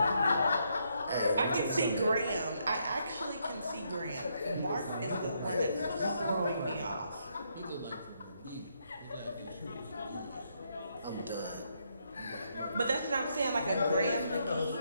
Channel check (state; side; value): inverted; both; correlation -0.76